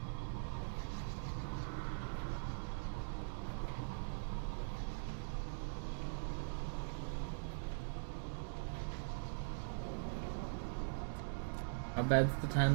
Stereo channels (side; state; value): left; silent; digital silence